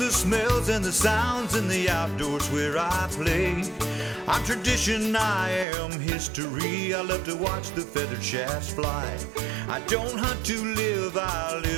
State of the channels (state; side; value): drops out; left; at 5.7 s